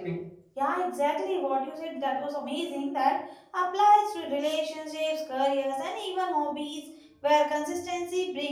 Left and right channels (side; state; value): both; identical; correlation 1.00